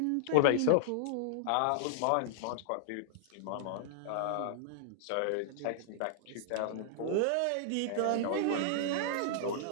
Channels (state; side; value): different; both; correlation -0.01